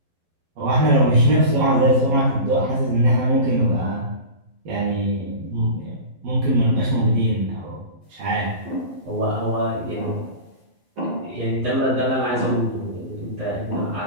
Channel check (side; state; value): left; late; 12 ms